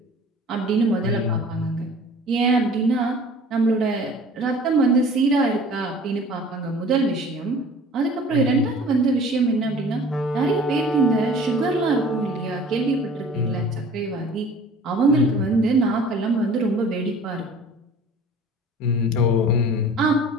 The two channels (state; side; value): normal; both; correlation 0.46